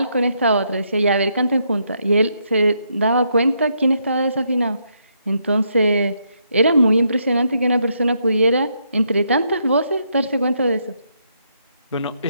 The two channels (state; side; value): inverted; both; correlation -0.77